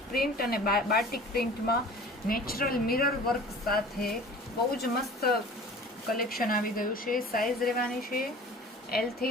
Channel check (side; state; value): both; normal; correlation 0.43